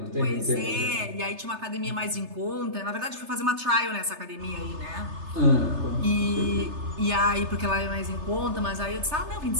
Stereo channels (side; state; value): left; late; 3.3 ms